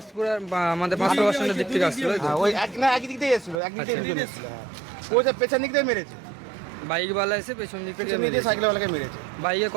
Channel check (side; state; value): left; drops out; at 3.6 s